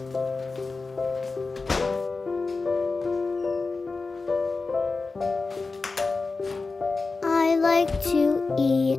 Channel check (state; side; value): quieter; right; 3.9 dB